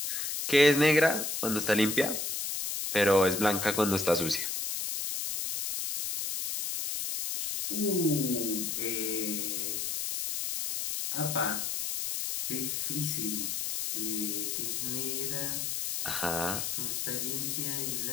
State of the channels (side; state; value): left; noise; hiss, 2 dB below the sound